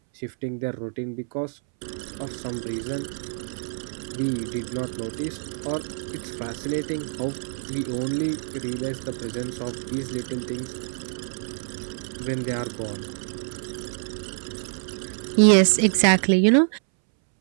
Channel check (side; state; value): left; silent; 61 dB below the other